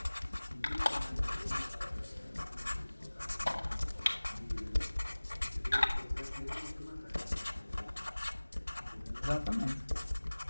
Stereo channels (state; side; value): inverted; both; correlation -1.00